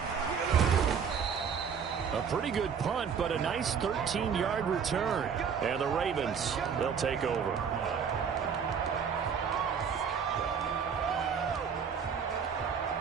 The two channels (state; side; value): quieter; left; 6.8 dB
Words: A pretty good punt, but a nice 13-yard return. And the Ravens, they'll take over.